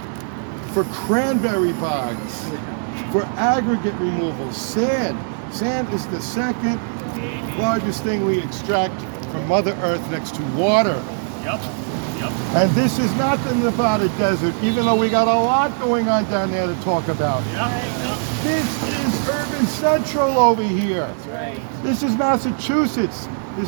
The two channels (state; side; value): silent; left; digital silence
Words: for cranberry bogs, for aggregate removal, sand. Sand is the second largest thing we extract from Mother Earth next to water. And this is not the Nevada desert, even though we got a lot going on down there to talk about. This is urban central over here. This is Massachusetts.